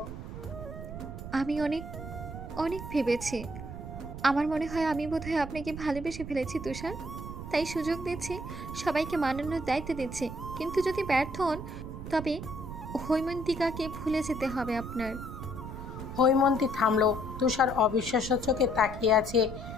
আমি অনেক অনেক ভেবেছি। আমার মনে হয় আমি বোধহয় আপনাকে ভালোবেসে ফেলেছি তুষার। তাই সুযোগ দিচ্ছি, সবাইকে মানানোর দায়িত্ব দিচ্ছি। কিন্তু যদি ব্যর্থ হন তবে হৈমন্তিকাকে ভুলে যেতে হবে আপনার। হৈমন্তী থামল। তুষার অবিশ্বাস্য চোখে তাকিয়ে আছে,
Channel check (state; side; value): noise; right; rumble, 9 dB below the sound